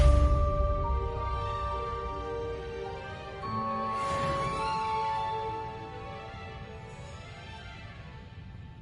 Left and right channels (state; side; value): identical; both; correlation 1.00